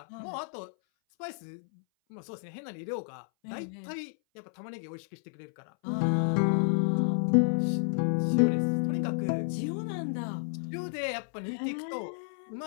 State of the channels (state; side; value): silent; right; 57 dB below the other